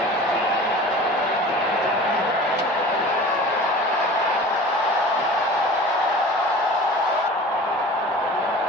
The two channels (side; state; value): both; normal; correlation 0.40